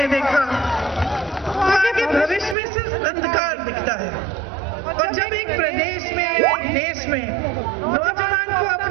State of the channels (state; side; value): drops out; left; at 2.6 s